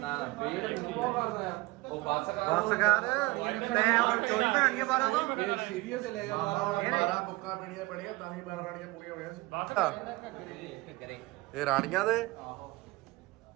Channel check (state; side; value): quieter; left; 21.7 dB